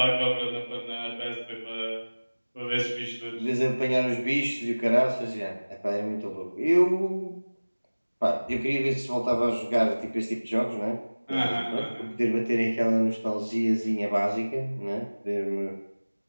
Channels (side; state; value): both; inverted; correlation -1.00